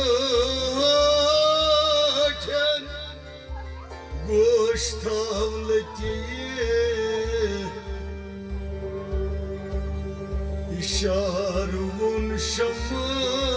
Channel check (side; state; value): both; identical; correlation 1.00